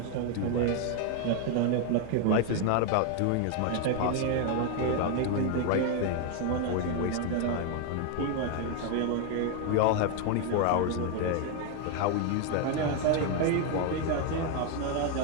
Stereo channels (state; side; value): different; both; correlation 0.01